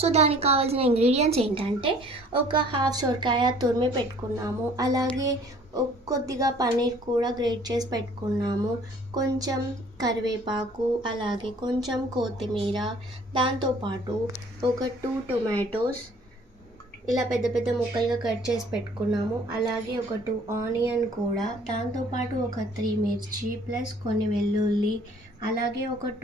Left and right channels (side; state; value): both; normal; correlation 0.54